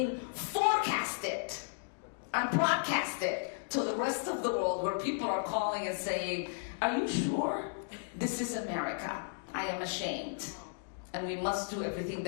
forecasted and broadcasted to the rest of the world, where people are calling and saying, are you sure? This is America. I am ashamed. And we must do everything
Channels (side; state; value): right; silent; digital silence